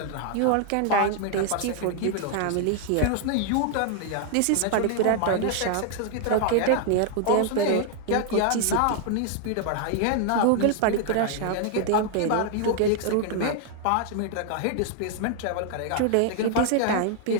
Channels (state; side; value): different; both; correlation 0.00